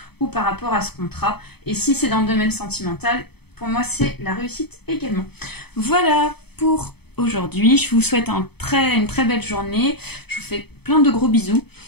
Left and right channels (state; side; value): late; right; 0.97 ms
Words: ou par rapport à ce contrat. Et si c'est dans le domaine sentimental, pour moi, c'est la réussite également. Voilà pour aujourd'hui. Je vous souhaite une très belle journée. Je vous fais plein de gros bisous